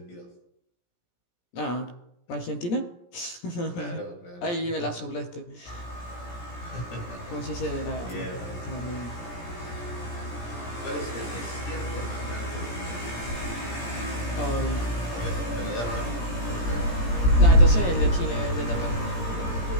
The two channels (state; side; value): late; right; 17 ms